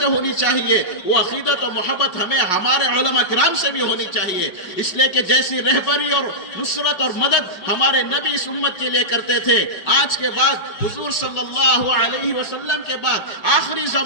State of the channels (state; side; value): late; right; 5.6 ms